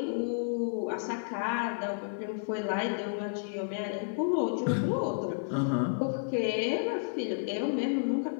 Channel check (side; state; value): right; silent; digital silence